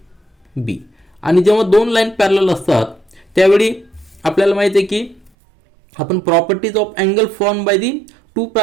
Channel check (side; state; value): left; drops out; at 5.3 s